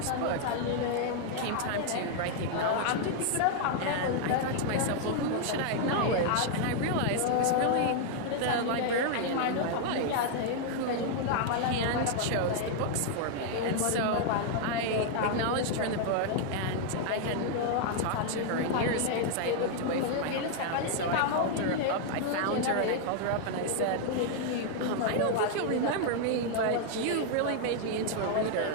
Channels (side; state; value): both; different; correlation 0.00